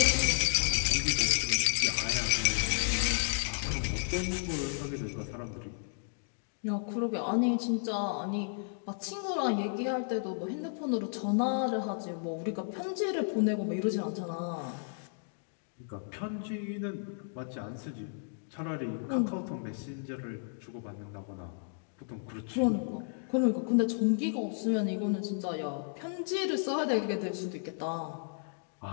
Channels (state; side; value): silent; right; digital silence